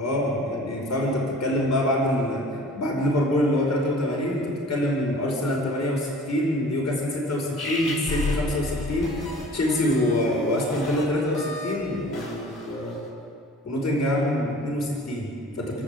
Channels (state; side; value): normal; both; correlation 0.46